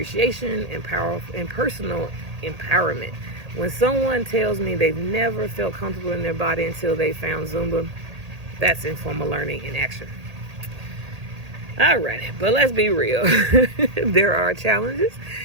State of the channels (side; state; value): left; late; 1.8 ms